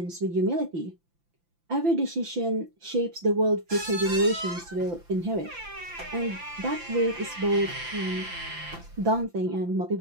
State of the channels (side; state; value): left; late; 5.9 ms